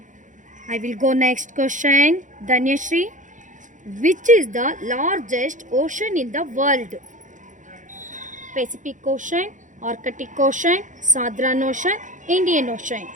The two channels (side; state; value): left; late; 0.37 ms